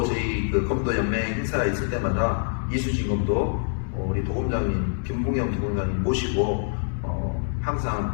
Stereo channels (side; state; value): right; silent; digital silence